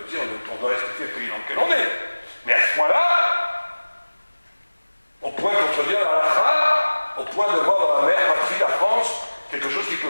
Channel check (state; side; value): inverted; both; correlation -1.00